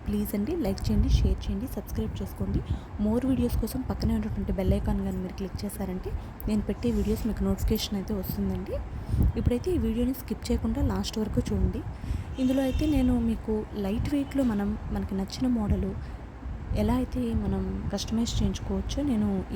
ప్లీజ్ అండి లైక్ చేయండి, షేర్ చేయండి, సబ్స్క్రైబ్ చేసుకోండి. మోర్ వీడియోస్ కోసం పక్కనే ఉన్నటువంటి బెల్ ఐకాన్ కానీ మీరు క్లిక్ చేశారంటే నేను పెట్టే వీడియోస్ మీకు నోటిఫికేషన్ అయితే వస్తుందండి. ఇప్పుడైతే ఈ వీడియోని స్కిప్ చేయకుండా లాస్ట్ వరకు చూడండి. ఇందులో అయితే నేను మీకు లైట్ వెయిట్లో మనకి నచ్చిన మోడలు ఎలా అయితే మనం కస్టమైజ్ చేయించుకోవచ్చో నేను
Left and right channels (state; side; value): identical; both; correlation 1.00